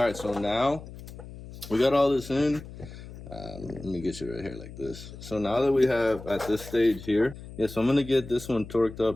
right, so now we got all this in. Let me get you right here like this. So now that we have at this stage here, so I'm going to get this one torqued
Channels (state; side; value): noise; left; hum, 14 dB below the sound